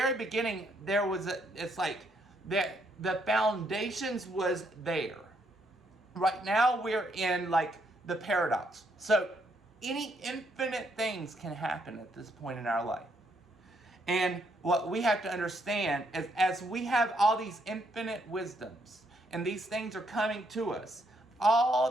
beginning there was it's like the foundations was there. Right now we're in like the paradox. So any infinite things can happen at this point in our life. And what we have to understand is, as we have all these infinite wisdoms and these things are coming to us, all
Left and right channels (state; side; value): normal; both; correlation 0.73